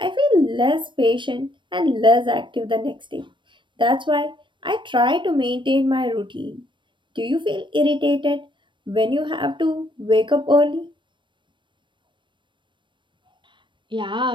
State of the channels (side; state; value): left; late; 0.23 ms